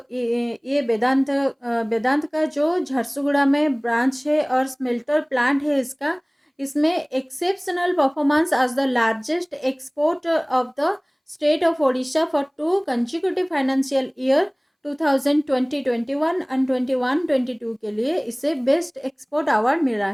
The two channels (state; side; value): identical; both; correlation 1.00